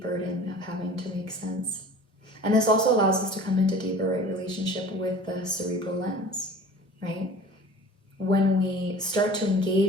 burden of having to make sense. And this also allows us to come into deeper relationship with the cerebral lens, right? When we start to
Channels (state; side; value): normal; both; correlation 0.43